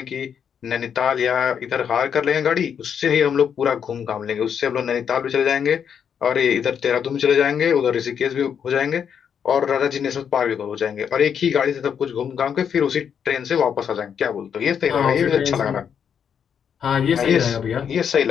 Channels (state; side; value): quieter; right; 7.7 dB